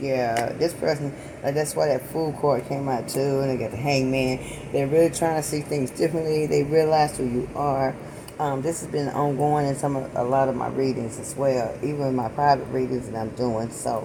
Yeah, this person, that's why that Fool card came out too, and they got the Hangman. They're really trying to see things differently. They realize who you are. This has been ongoing in a lot of my readings as well, even my private readings that I'm doing.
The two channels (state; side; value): identical; both; correlation 1.00